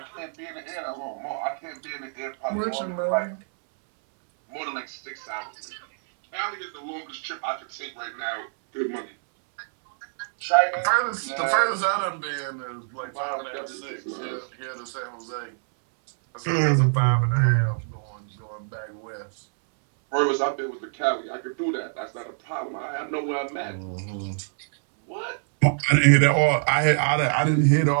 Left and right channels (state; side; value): silent; left; 61 dB below the other